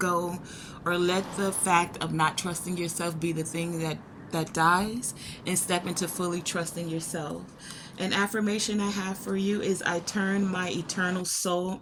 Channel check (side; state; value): both; identical; correlation 1.00